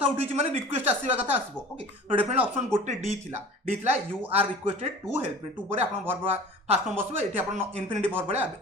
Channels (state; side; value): normal; both; correlation 0.41